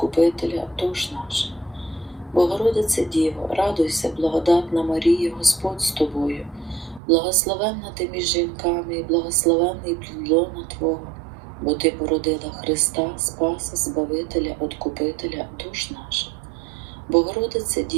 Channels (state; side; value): drops out; left; at 7.0 s